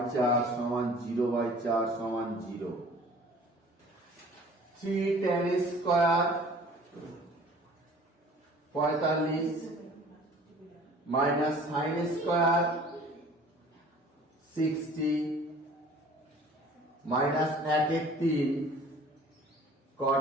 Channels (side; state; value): both; normal; correlation 0.49